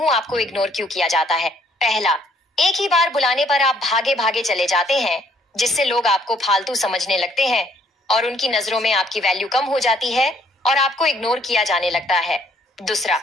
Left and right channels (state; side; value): normal; both; correlation 0.64